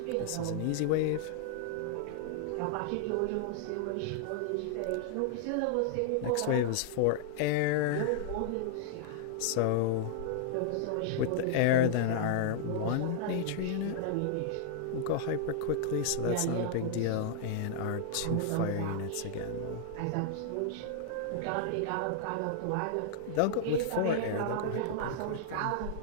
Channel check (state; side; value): different; both; correlation -0.01